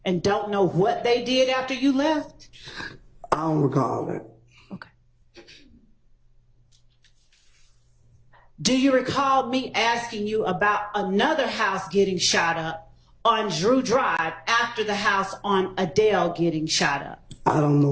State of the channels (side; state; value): both; identical; correlation 1.00